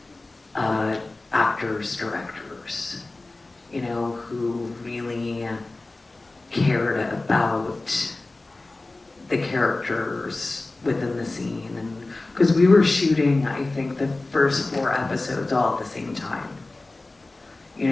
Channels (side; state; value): right; quieter; 3.1 dB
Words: actors, directors, you know, who really cared about the characters within the scene. And because we were shooting, I think, the first 4 episodes all at the same time. You